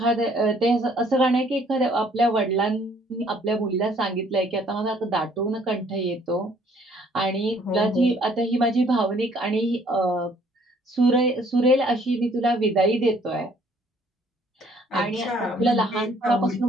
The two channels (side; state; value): both; normal; correlation 0.61